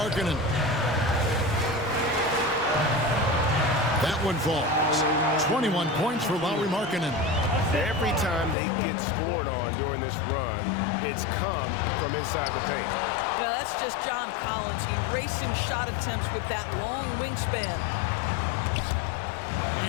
That one falls. 21 points for Lauri Markkanen. Every time they get scored on during this run, it's come from inside the paint. Well, that's just John Collins erasing shot attempts with that long wingspan.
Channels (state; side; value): drops out; right; at 8.6 s